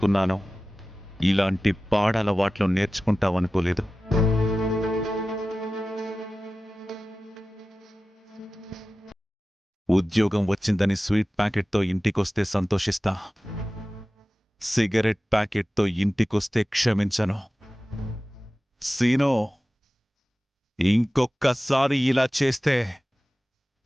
ఇలాంటి పాడలవాట్లు నేర్చుకుంటావనుకోలేదు. ఉద్యోగం వచ్చిందని స్వీట్ ప్యాకెట్తో ఇంటికొస్తే సంతోషిస్తా. సిగరెట్ ప్యాకెట్తో ఇంటికొస్తే క్షమించను. సీనో, ఇంకొక్కసారి ఇలా చేస్తే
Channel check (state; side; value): normal; both; correlation 0.95